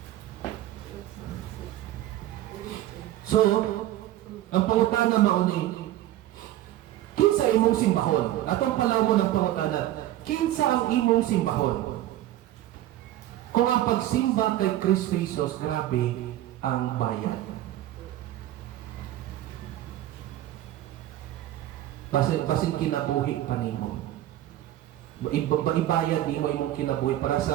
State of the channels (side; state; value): left; quieter; 13.9 dB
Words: So, ang pangutana mo ni kinsa imong simbahon. Atong palaw mo ng pangutana, kinsa ang imong simbahon. Kung ang pagsimba kay Kristo Jesus, grabe ang bayad. Basin kinabuhi pa nimo. Ibayad nimo imong kinabuhi para